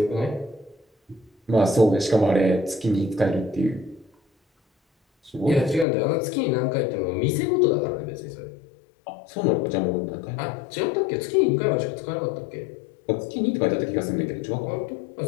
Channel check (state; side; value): drops out; right; at 5.9 s